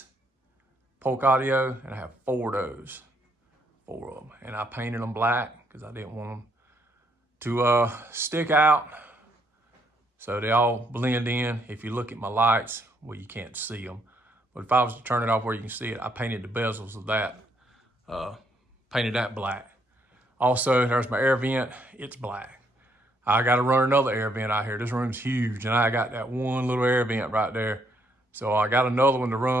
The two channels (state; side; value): normal; both; correlation 0.72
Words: Polk audio, and I have 4 of those, 4 of them. And I painted them black because I didn't want them to stick out. So they all blend in. If you look at my lights, well, you can't see them. But if I was to turn it off where you can see it, I painted the bezels of that, painted that black. Also, there's my air vent, it's black. I got to run another air vent out here. This room's huge, and I got that one little air vent right there. So I got another one to